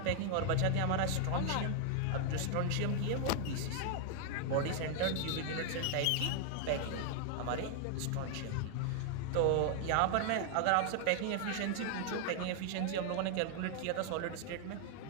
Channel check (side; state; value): both; different; correlation 0.00